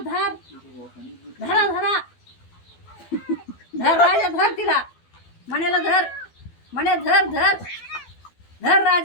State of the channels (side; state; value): right; late; 12 ms